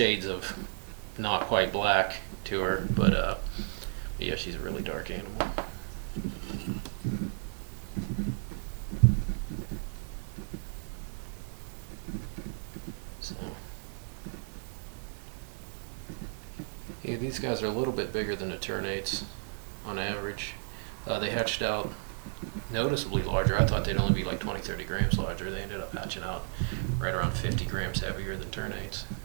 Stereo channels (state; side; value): silent; left; digital silence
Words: of not quite black to her, but yeah, she's a really dark animal. So, yeah, these guys are a little bit bigger than the ternates on average. They hatched out noticeably larger. I thought they'd only be like 20-30 grams larger. They ended up hatching out right around 50 grams heavier than ternates.